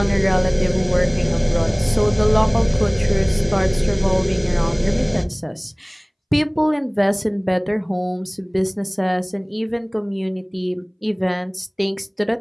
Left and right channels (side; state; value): both; identical; correlation 1.00